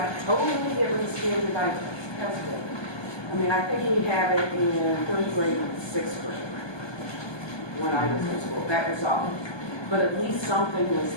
totally get rid of standardized testing. I mean, I think we had it in third grade and sixth grade when I was in school. That was all. But at least something was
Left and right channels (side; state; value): right; late; 1.2 ms